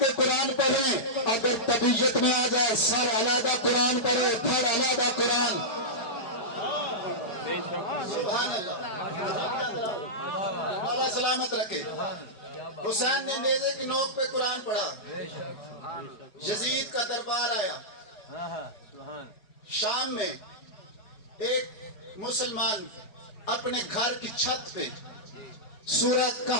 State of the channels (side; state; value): right; late; 4.8 ms